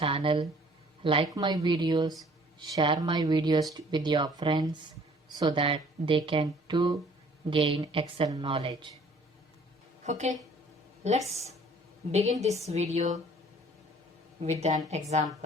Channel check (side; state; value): both; normal; correlation 0.55